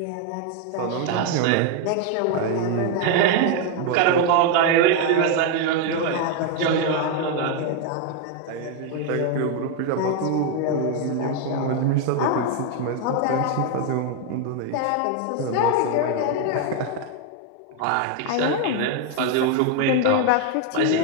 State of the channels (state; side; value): different; both; correlation 0.01